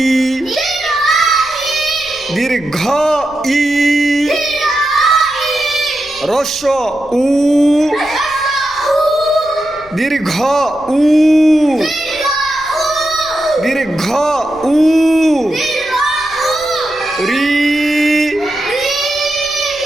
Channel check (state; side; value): noise; left; rumble, 23 dB below the sound